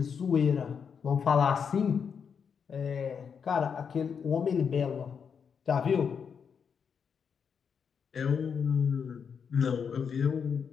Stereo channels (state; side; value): quieter; right; 6.7 dB